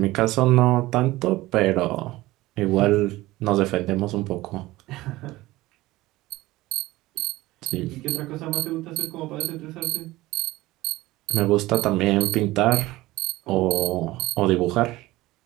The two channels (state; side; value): quieter; left; 18.3 dB